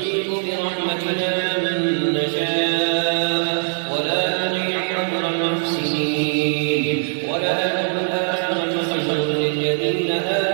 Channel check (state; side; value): silent; left; 65 dB below the other